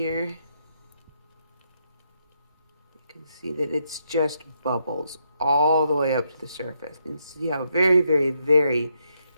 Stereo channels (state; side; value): inverted; both; correlation -0.78